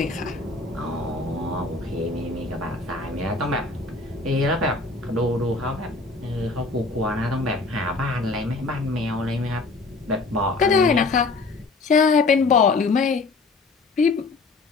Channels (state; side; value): quieter; right; 3.7 dB